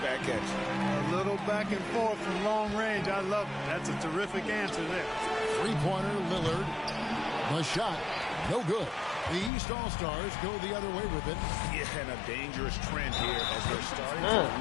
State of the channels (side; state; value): right; drops out; at 9.5 s